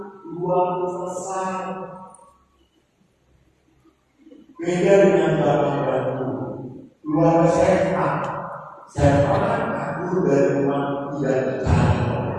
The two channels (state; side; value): identical; both; correlation 1.00